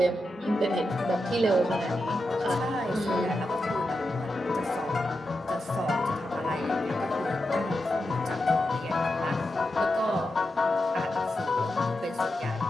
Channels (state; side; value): normal; both; correlation 0.88